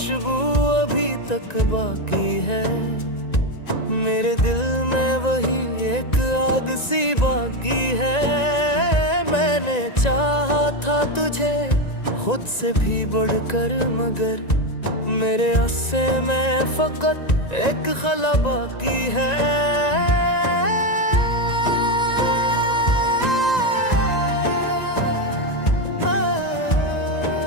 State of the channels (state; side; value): late; right; 1.9 ms